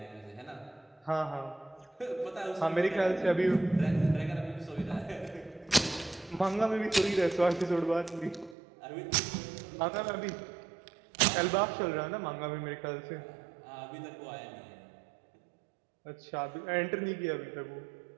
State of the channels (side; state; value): left; drops out; at 8.6 s